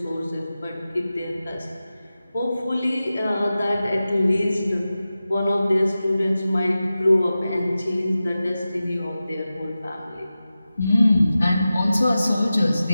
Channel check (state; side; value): inverted; both; correlation -0.94